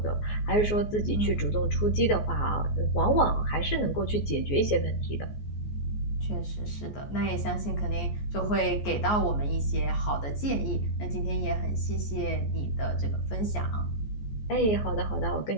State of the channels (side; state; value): right; late; 14 ms